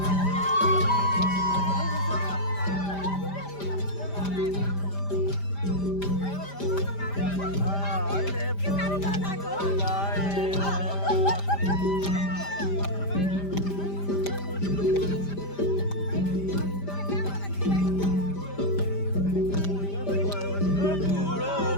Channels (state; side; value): late; right; 5.0 ms